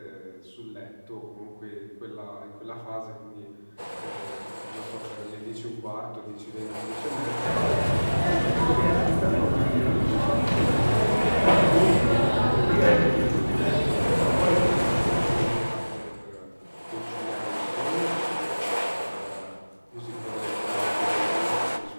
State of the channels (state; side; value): inverted; both; correlation -1.00